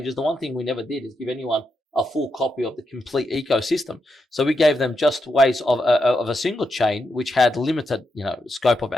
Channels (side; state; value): both; normal; correlation 0.83